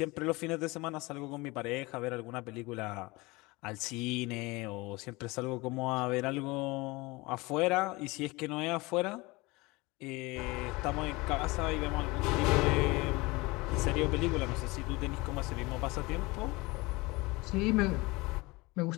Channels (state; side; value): quieter; right; 23.4 dB